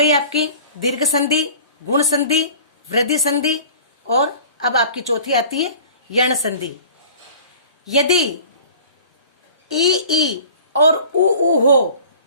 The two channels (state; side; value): inverted; both; correlation -0.45